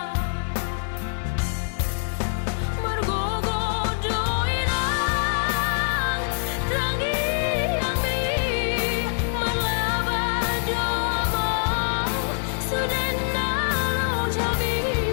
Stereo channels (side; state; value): right; silent; digital silence